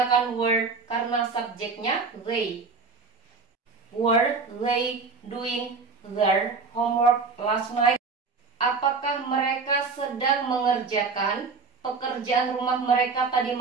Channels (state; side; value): quieter; left; 4.6 dB